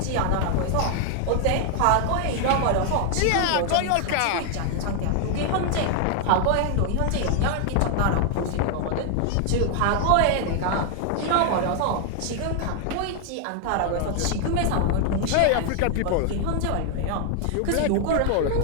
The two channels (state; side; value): different; both; correlation 0.00